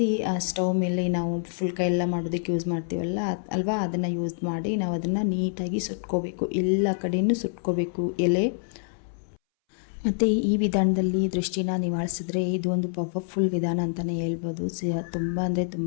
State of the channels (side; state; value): right; silent; 61 dB below the other